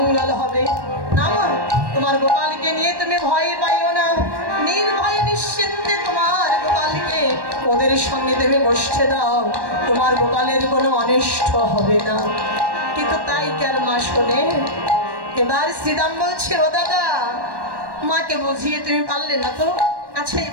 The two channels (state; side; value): late; left; 1.1 ms